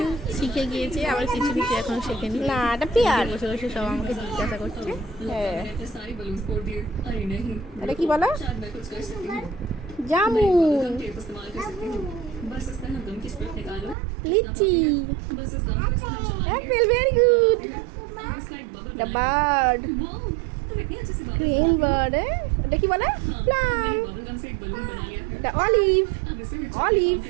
শিখে গিয়েছে, আবার কিছু কিছু এখন শেখেনি। বসে বসে সব আমাকে জিজ্ঞাসা করছে। এটা কি বলো? জামুন, লিচি, apple, very good. The bird, green bird, এটা কি বলে? প্লাম, এটা অলিভ, অলিভ,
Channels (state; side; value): drops out; left; at 14.0 s